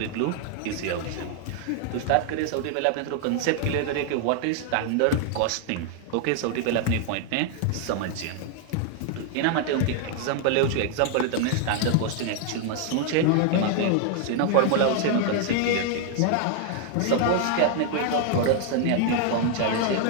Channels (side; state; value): both; different; correlation 0.00